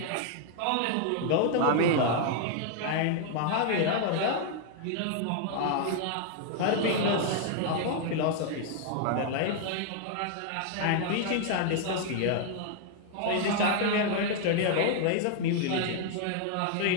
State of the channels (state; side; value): different; both; correlation 0.00